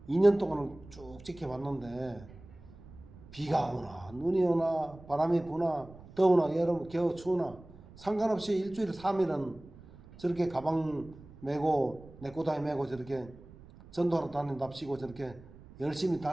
2년 동안 쭉 지켜봤는데 비가 오나 눈이 오나 바람이 부나 더우나 여름 겨우 추우나 상관없이 일주일에 3일은 저렇게 가방 메고 내꼬다리 메고 저렇게 전도하러 다닌답시고 저렇게 열심히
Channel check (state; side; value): noise; right; rumble, 20 dB below the sound